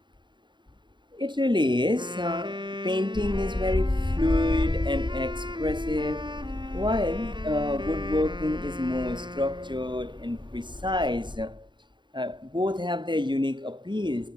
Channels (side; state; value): left; late; 0.23 ms